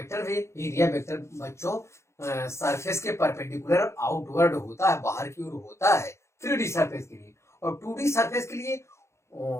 है। एरिया वेक्टर बच्चों सरफेस के परपेंडिकुलर आउटवर्ड होता है, बाहर की ओर होता है 3D सरफेस के लिए, और 2D सरफेस के लिए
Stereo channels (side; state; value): right; late; 0.13 ms